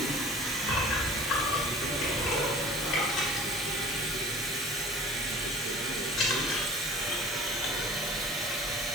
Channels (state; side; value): normal; both; correlation 0.45